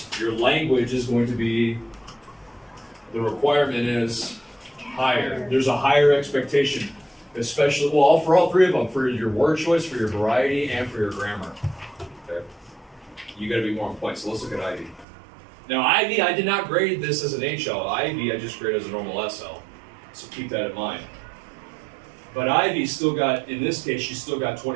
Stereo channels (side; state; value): left; drops out; at 15.1 s